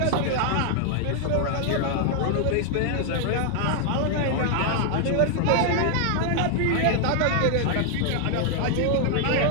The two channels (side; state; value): both; different; correlation 0.00